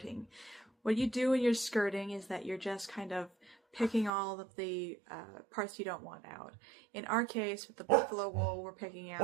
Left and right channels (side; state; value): left; drops out; at 4.1 s